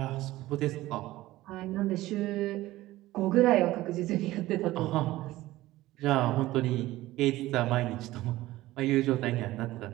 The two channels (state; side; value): quieter; left; 16.9 dB